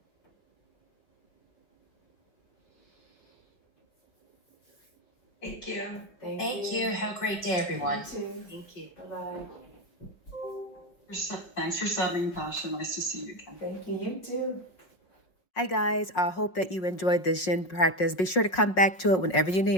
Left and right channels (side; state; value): right; late; 5.5 ms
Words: Thank you. Thank you. Have a great day, everyone. You too. Thank you. Bye-bye. Thanks for subbing, Tasha. Nice to see you again. Thank you. You too. Hi guys, I hope that you enjoyed this Yin practice. Be sure to come back to it whenever you